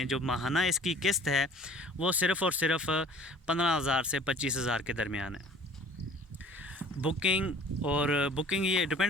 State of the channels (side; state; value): both; normal; correlation 0.50